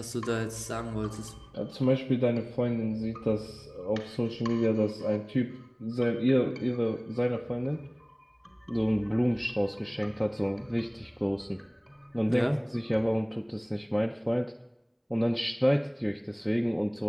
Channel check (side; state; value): both; identical; correlation 1.00